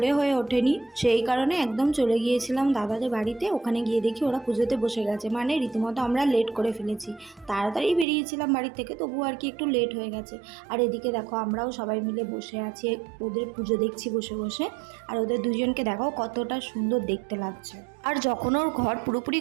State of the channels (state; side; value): drops out; left; at 8.1 s